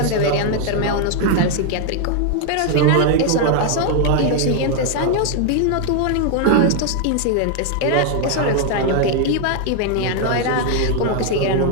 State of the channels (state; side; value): different; both; correlation 0.01